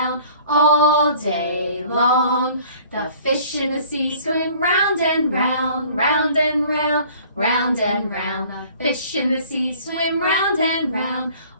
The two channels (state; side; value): inverted; both; correlation -0.52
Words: all day long. The fish in the sea swim round and round, round and round, round and round. The fish in the sea swim round and round